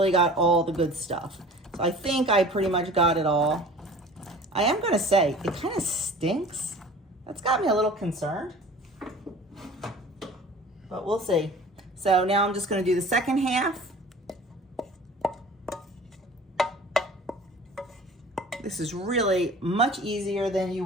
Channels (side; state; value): both; normal; correlation 0.44